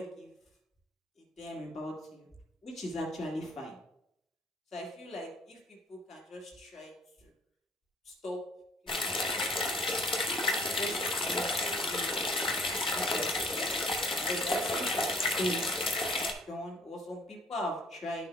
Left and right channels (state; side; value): normal; both; correlation 0.56